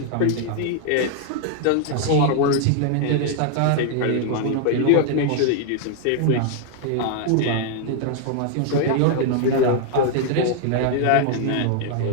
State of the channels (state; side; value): different; both; correlation 0.00